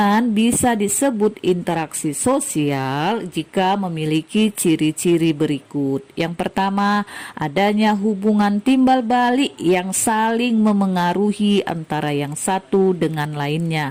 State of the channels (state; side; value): identical; both; correlation 1.00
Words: bisa disebut interaksi sosial jika memiliki ciri-ciri berikut. Yang pertama, adanya hubungan timbal balik yang saling memengaruhi antara yang satu dengan